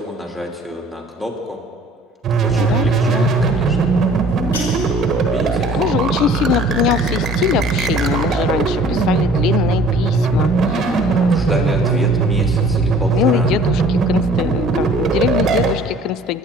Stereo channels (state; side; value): normal; both; correlation 0.51